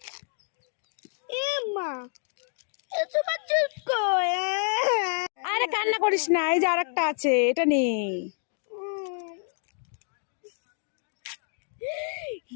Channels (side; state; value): right; silent; 59 dB below the other